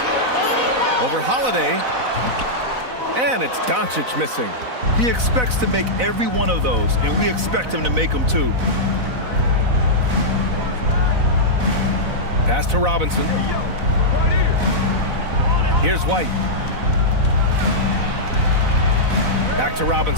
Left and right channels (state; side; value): late; left; 4.0 ms